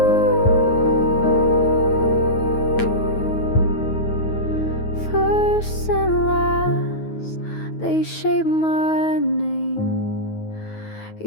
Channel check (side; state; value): right; late; 9.3 ms